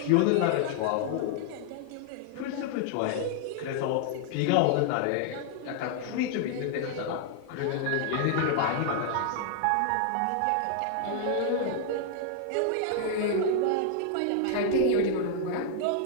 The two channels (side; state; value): both; different; correlation 0.00